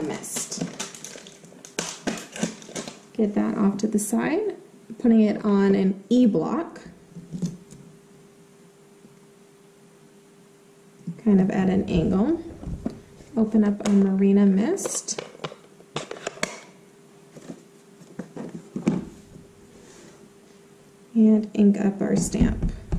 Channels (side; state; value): both; identical; correlation 1.00